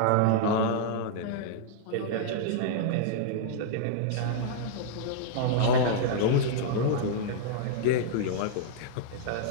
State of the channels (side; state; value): both; different; correlation -0.02